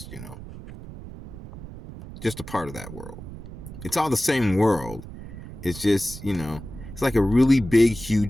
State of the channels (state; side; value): noise; right; rumble, 13 dB below the sound